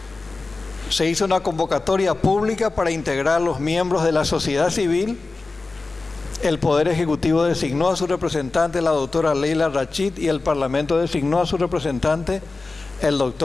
Se hizo una convocatoria pública para integrar los miembros de la sociedad civil. El Poder Ejecutivo designó a su representante, la doctora Leila Rachid, y el Parlamento designó a su representante, el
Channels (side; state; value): right; quieter; 3.6 dB